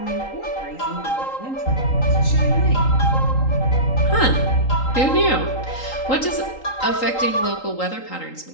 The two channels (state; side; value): late; right; 3.8 ms